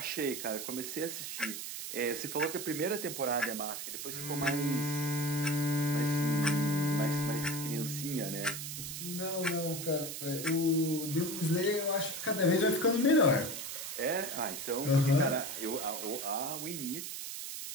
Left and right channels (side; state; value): right; noise; hiss, 6 dB below the sound